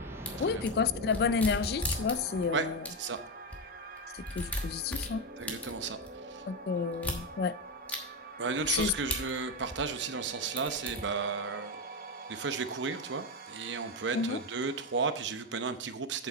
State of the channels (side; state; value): both; normal; correlation 0.10